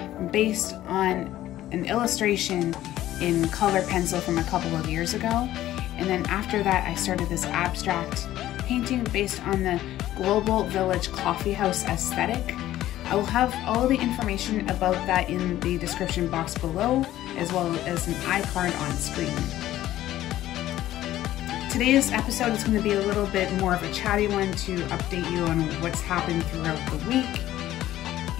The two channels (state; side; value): quieter; right; 13.9 dB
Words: based on an illustration in color pencil from a couple of years ago. And then after that, I started this abstract painting based on the global Village Coffeehouse aesthetic. I will have all the information about that in the description box below, as well as an iCard on screen. Today's episode is going to be a little bit more of a chatty one to update you on what's happened throughout the week.